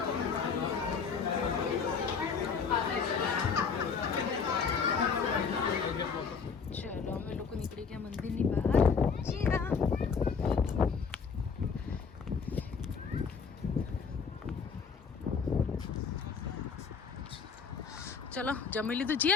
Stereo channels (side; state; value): right; quieter; 5.7 dB